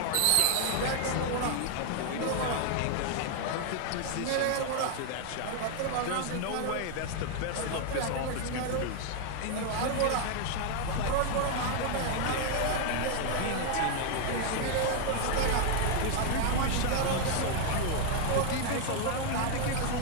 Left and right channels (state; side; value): different; both; correlation 0.00